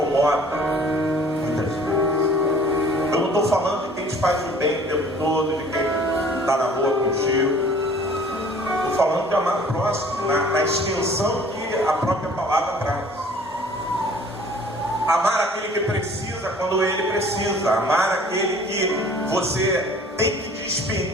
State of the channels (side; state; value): both; normal; correlation 0.51